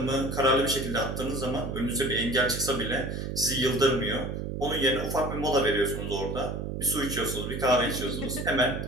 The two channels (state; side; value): noise; right; hum, 4 dB below the sound